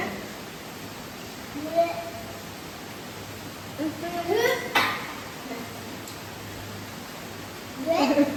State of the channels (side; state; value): both; identical; correlation 1.00